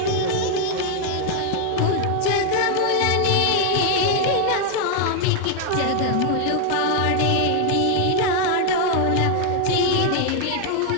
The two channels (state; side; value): different; both; correlation 0.00